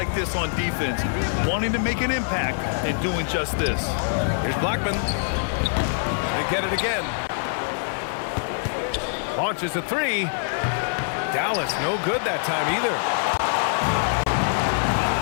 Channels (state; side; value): silent; right; 62 dB below the other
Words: this on defense, wanting to make an impact and doing just this. Here's Blackman. They get it again. Launches a 3. Dallas no good that time either.